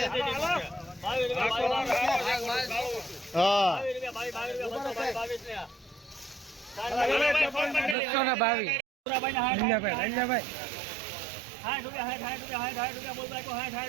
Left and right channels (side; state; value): left; drops out; at 8.0 s